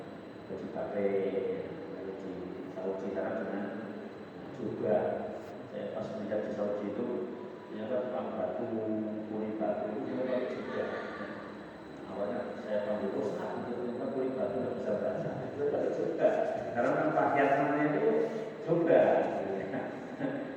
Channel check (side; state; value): both; identical; correlation 1.00